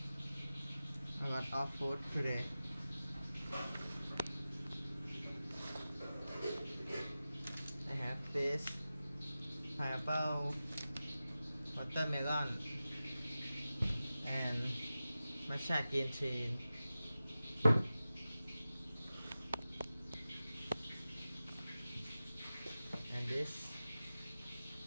a lot of food today. I have this pineapple, watermelon, and matcha green tea. And this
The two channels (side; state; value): both; inverted; correlation -0.95